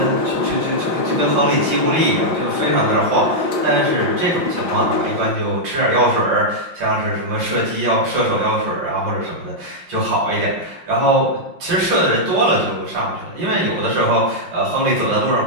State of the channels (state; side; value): late; left; 5.7 ms